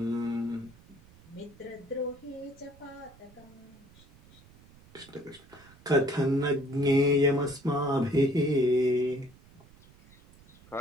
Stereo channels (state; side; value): noise; right; rumble, 25 dB below the sound